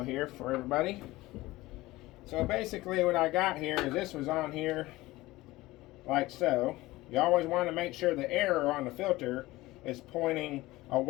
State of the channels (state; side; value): quieter; right; 18.9 dB